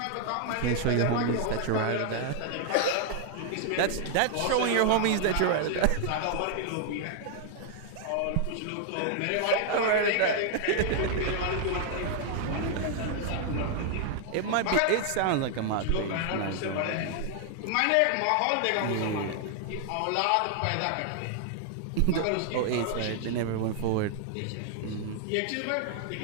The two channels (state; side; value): different; both; correlation 0.00